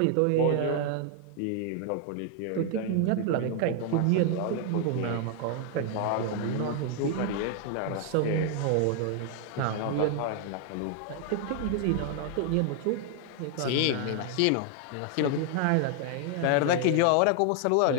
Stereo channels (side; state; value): both; different; correlation 0.00